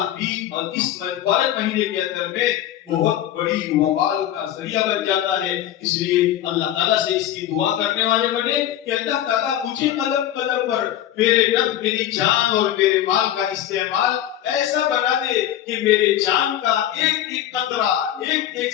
بھی اور اس مبارک مہینے کے اندر میں بہت بڑی وبال کا ذریعہ بن جاتا ہے۔ اس لیے اللہ تعالیٰ سے اس کی دعا کرنے والے بنے کہ اللہ تعالیٰ مجھے قدم قدم پر میری جان اور میرے مال کا استعمال ایسا بنا دے کہ میرے جان کا ایک ایک قطرہ، ایک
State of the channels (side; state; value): right; quieter; 11.9 dB